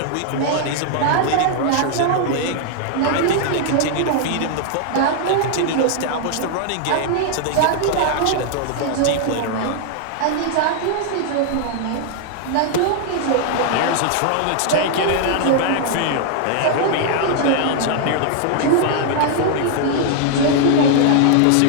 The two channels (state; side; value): different; both; correlation 0.00